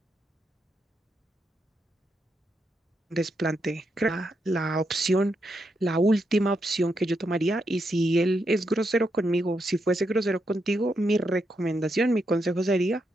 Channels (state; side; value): normal; both; correlation 0.82